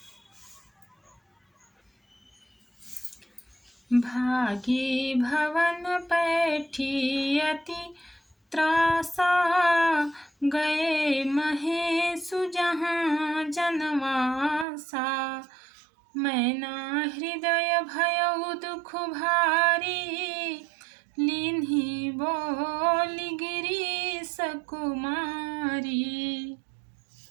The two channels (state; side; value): drops out; left; at 14.7 s